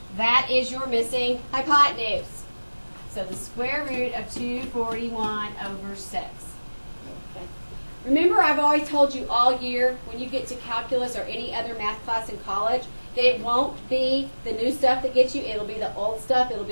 That is your missing hypotenuse. So the square root of 241 over 6. Okay. Remember, I've always told you all year when you get to calculus or any other math class in college that it won't be the new stuff that gets you. It'll be the old stuff. It'll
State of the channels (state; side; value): inverted; both; correlation -1.00